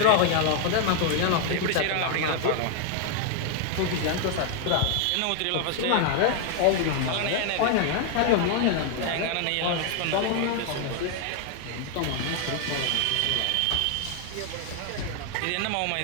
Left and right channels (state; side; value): different; both; correlation 0.00